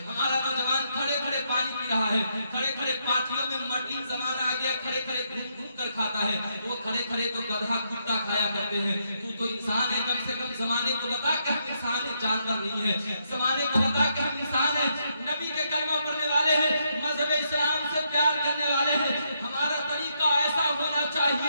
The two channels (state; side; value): inverted; both; correlation -0.77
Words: ہمارا نوجوان کھڑے پانی پی رہا ہے، کھڑے پارٹیوں میں ماڈلنگ زمانہ آ گیا، کھڑے گھوم کر کھاتا ہے۔ وہ کھڑے تو گدھا کتا کھایا کرتے ہیں، تو انسان ہے، کم سے کم زمانے کو بتا کہ ہم انسان ہیں، جانور نہیں ہے، زمانے کو بتا کہ ہم انسان ہیں، نبی کے کلمہ پڑھنے والے ہیں، مذہب اسلام سے پیار کرنے والے ہیں۔ ہمارا طریقہ ایسا ہونا